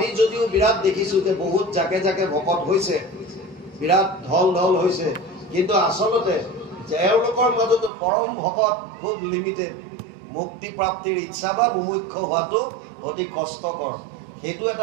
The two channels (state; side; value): drops out; left; at 7.9 s